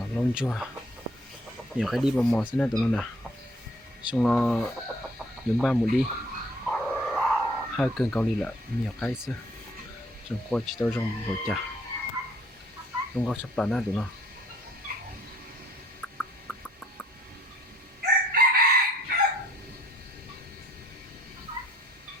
lông chua nhiều cái đi vào mò xin tụi nó nè xong nó dùng ba một đi hai cân cao ly là nhiều cái xưa trong qua chỉ tao trong bộ chả trong có sắp tàn á tụi nó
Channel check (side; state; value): both; normal; correlation 0.60